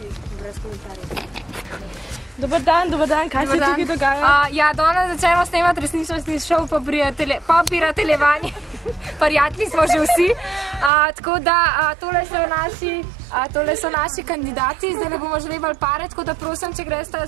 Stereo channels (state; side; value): drops out; left; at 10.9 s